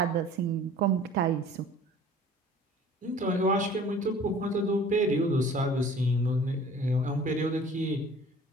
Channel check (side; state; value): both; normal; correlation 0.48